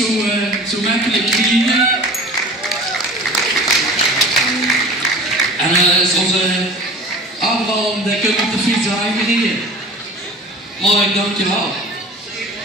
zo makkelijk krijgen. En zoals Abraham, die kunt op de fiets aangereden. Mark, dankjewel.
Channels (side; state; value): both; normal; correlation 0.40